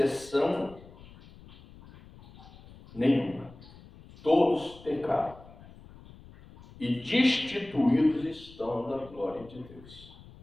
nenhuma. Todos pecaram e destituídos estão da glória de Deus.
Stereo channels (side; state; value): left; noise; rumble, 21 dB below the sound